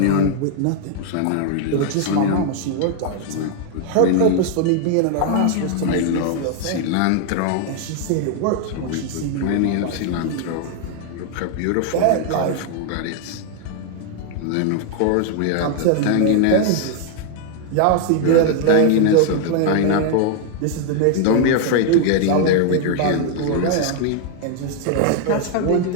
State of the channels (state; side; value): different; both; correlation 0.00